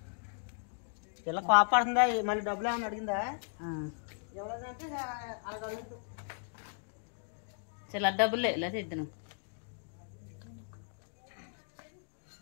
ఇలా కోపడుతుందా మళ్ళీ డబ్బులు ఏమన్నా అడిగిందా? ఎవరంటే అలా అడుగుతూ చాలా డబ్బులే లేదా ఇద్దరు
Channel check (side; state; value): right; silent; digital silence